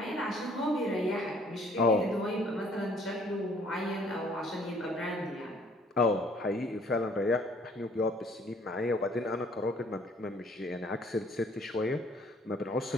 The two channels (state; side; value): normal; both; correlation 0.59